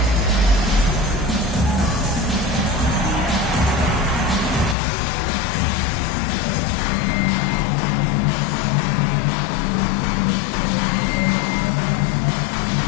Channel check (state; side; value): drops out; right; at 4.8 s